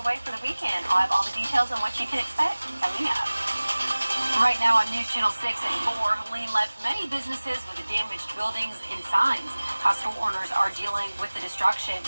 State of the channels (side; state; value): both; inverted; correlation -1.00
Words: way for the weekend. I'll have all the details on what you can expect coming up. Right now on News Channel 6 at 4, Helene left many businesses with damaged buildings and signs. How store owners are dealing with the destruction.